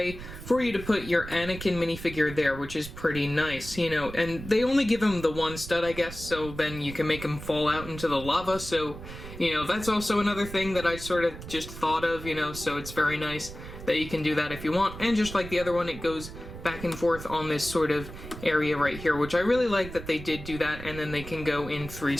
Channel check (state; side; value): noise; right; rumble, 12 dB below the sound